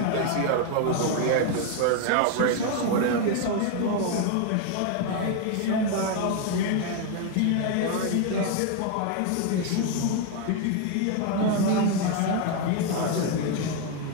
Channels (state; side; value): different; both; correlation 0.01